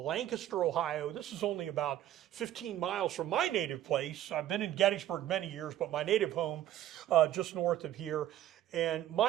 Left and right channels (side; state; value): left; quieter; 12.5 dB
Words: Ohio. This is only about 15 miles from my native place. I've been in Gettysburg many years, but my native home just north of here. And